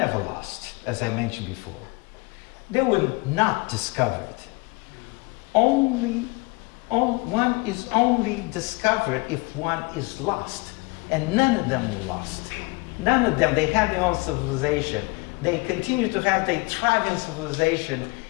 lost, as I mentioned before. They were not discovered. One is only discovered if one is lost, and none of them were lost. None of them. They had their own civilization. They continue to have their thriving civilization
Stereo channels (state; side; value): quieter; right; 26.9 dB